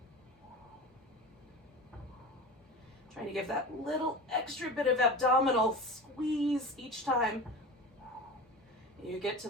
Trying to give that little extra bit of abdominal squeeze each time you get to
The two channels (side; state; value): both; normal; correlation 0.31